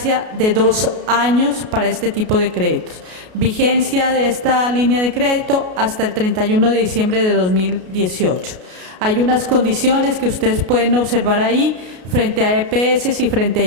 de 2 años para este tipo de créditos. Vigencia de esta línea de crédito hasta el 31 de diciembre de 2018. Hay unas condiciones que ustedes pueden observar ahí frente a EPS y frente a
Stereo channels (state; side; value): late; left; 33 ms